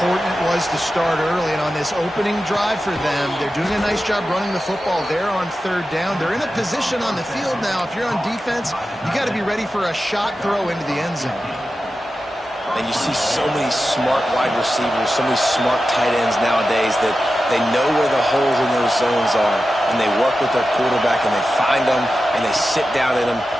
it was to start early. And on this opening drive for them, they're doing a nice job running the football there on 3rd down. They're in a position on the field now. If you're on defense, you got to be ready for a shot throw into the end zone. And you see so many smart wide receivers, so many smart tight ends nowadays that they know where the holes in those zones are, and they work with their quarterback, and they find them, and they sit down in them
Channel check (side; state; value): both; normal; correlation 0.92